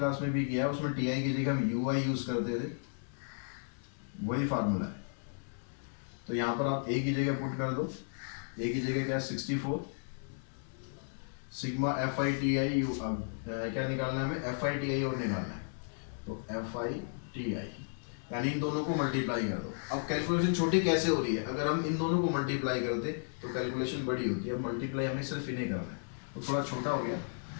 में भी किया है, उसमें टी आई की जगह हम यू आई यूज करते थे, वही फार्मूला है। तो यहाँ पर आप ए की जगह पुट कर दो, ए की जगह क्या 64 sigma F I T I you, क्या निकालना है हमें, एफ आई टी आई और निकालना है, तो एफ आई टी आई, यानी इन दोनों को मल्टीप्लाई कर दो। अब कैलकुलेशन छोटी कैसे हो रही है, अगर हम इन दोनों को मल्टीप्लाई करते तो कैलकुलेशन बड़ी होती है, अब मल्टीप्लाई हमें सिर्फ इन्हें करना है, तो थोड़ा छोटा हो गया,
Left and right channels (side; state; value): right; silent; digital silence